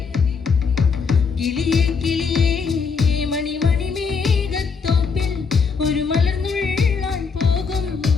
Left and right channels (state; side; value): quieter; right; 5.3 dB